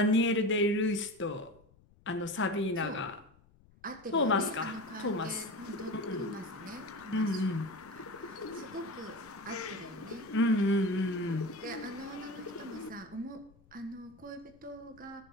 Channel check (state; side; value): noise; left; rumble, 28 dB below the sound